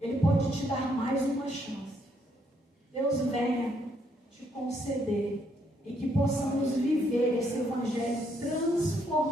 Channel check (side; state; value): both; normal; correlation 0.72